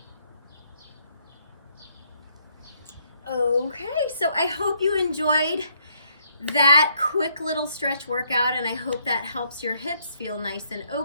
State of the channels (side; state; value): both; inverted; correlation -0.72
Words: Okay, so I hope you enjoyed that quick little stretch workout, and I hope that helps your hips feel nice and